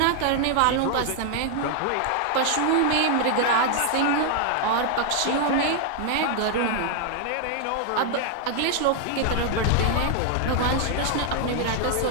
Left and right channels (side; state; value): both; different; correlation 0.00